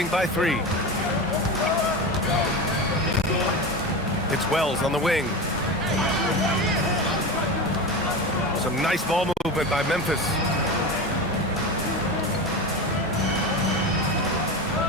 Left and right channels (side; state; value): both; normal; correlation 0.24